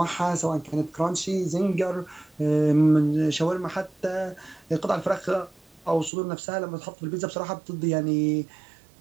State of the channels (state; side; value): drops out; left; at 6.1 s